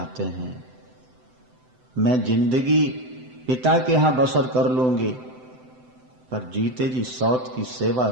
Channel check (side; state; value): left; late; 7.8 ms